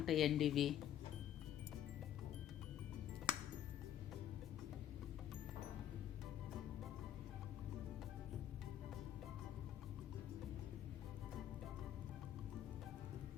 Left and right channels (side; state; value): right; quieter; 11.1 dB